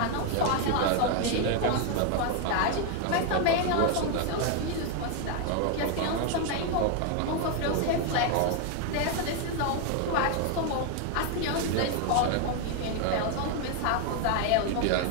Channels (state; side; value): different; both; correlation 0.01